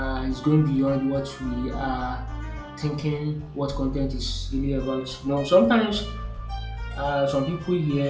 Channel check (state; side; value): identical; both; correlation 1.00